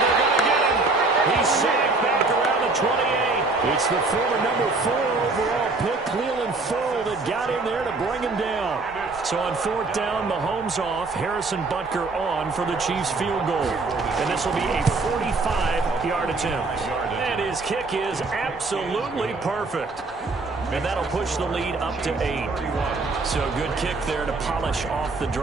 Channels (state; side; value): quieter; left; 3.6 dB